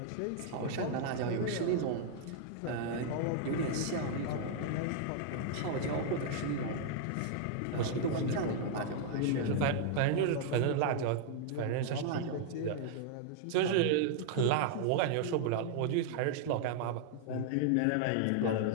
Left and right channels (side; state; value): both; different; correlation 0.00